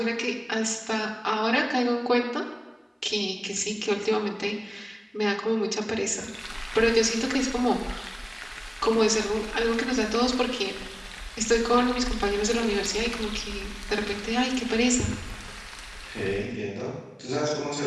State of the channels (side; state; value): both; identical; correlation 1.00